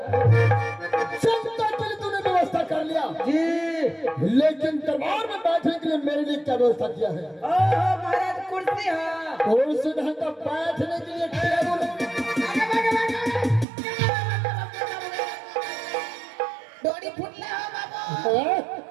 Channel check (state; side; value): drops out; left; at 13.7 s